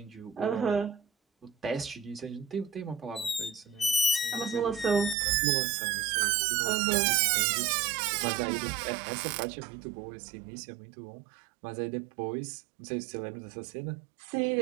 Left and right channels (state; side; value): drops out; left; at 5.2 s